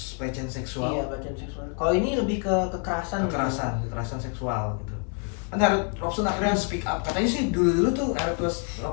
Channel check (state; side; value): quieter; right; 38.7 dB